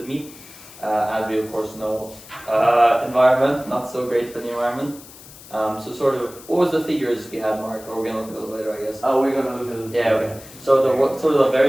meat. As we of course know, environment, not so great for the environment. So sort of, what was the figures we had, Mark? Or we're going to look at those later, I guess. Oh, we're gonna look at it. Yeah, okay. So the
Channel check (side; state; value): left; noise; hiss, 19 dB below the sound